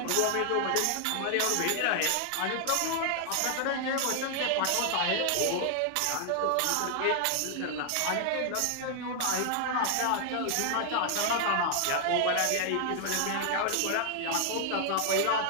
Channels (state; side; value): different; both; correlation 0.00